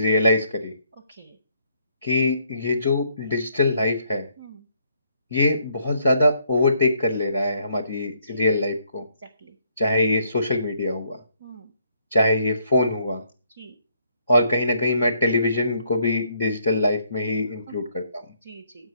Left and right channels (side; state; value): both; inverted; correlation -0.70